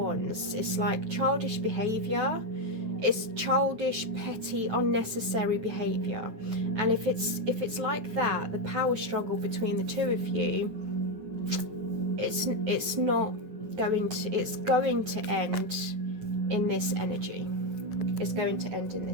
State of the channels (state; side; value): late; left; 9.6 ms